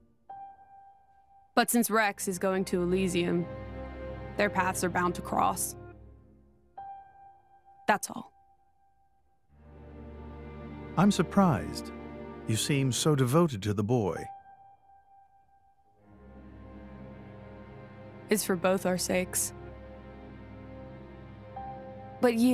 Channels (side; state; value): both; identical; correlation 1.00